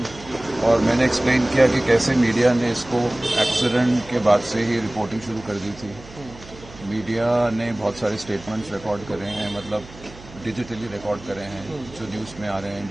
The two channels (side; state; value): right; noise; hum, 19 dB below the sound